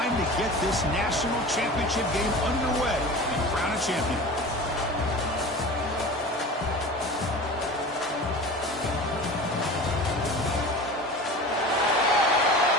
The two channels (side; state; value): both; normal; correlation 0.35